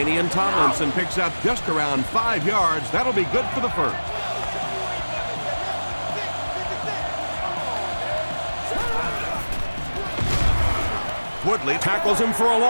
Tomlinson picks up just around 5 yards. That'll be good for the first. Woodley tackles him for a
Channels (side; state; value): both; inverted; correlation -1.00